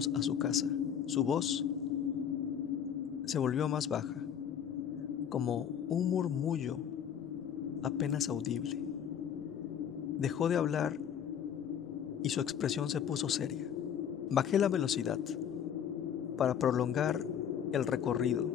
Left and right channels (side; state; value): right; quieter; 8.6 dB